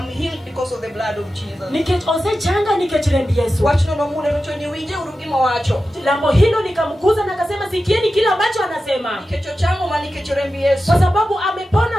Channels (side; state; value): both; normal; correlation 0.92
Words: healed because of the blood of Jesus. Nikech osechanga nikech remb Yesu. Wachno no mune no ni winje urugima wacho. Lambo hilo nikamkuza na akasema sikieni kile ambacho anasema. Nikech changu ma nikech remb Yesu. Kwa sababu